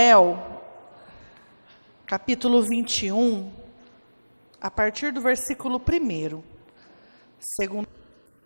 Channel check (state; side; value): inverted; both; correlation -1.00